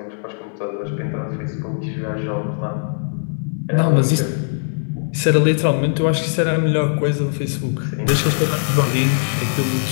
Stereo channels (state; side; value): silent; right; digital silence